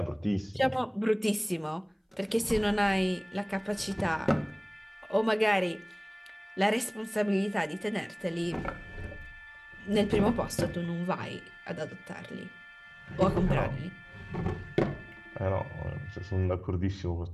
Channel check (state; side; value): identical; both; correlation 1.00